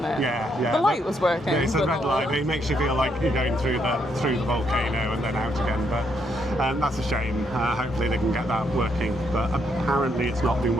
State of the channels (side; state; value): both; normal; correlation 0.75